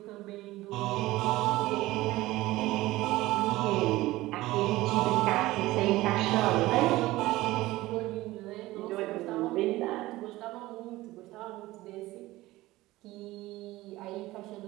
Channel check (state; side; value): quieter; left; 18.1 dB